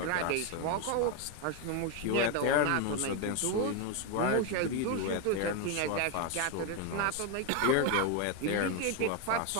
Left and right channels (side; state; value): both; different; correlation 0.01